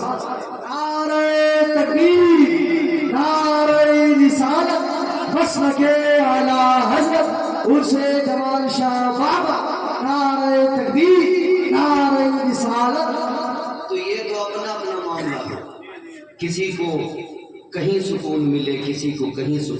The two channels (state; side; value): identical; both; correlation 1.00